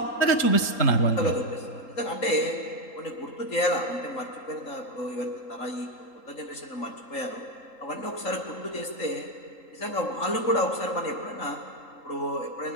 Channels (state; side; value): late; right; 3.8 ms